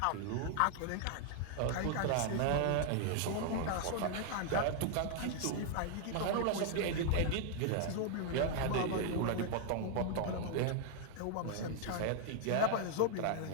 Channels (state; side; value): different; both; correlation 0.00